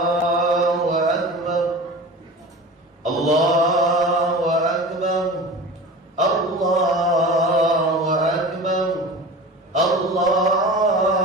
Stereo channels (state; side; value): normal; both; correlation 0.35